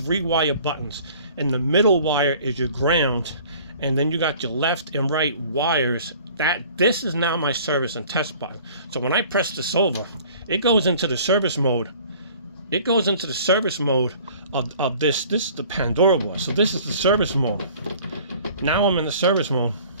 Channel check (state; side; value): inverted; both; correlation -0.50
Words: buttons, and the middle wire is your ground, and then you got your left and right wires. This is now my service and test button. So when I press this over, it goes into the service mode. It goes into the service mode of this. This is the PanDora board. So this is the service mode. Now I'm in the service mode.